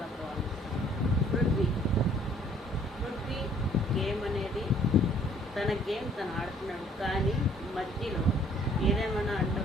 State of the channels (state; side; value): normal; both; correlation 0.58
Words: బాగుంది. పృథ్వీ గేమ్ అనేది తన గేమ్ తను ఆడుతున్నాడు. కానీ మధ్యలో ఏదేమైనా